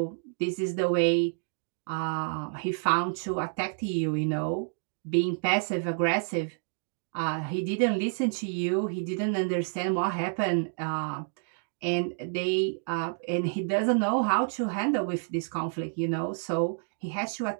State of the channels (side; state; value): left; silent; 58 dB below the other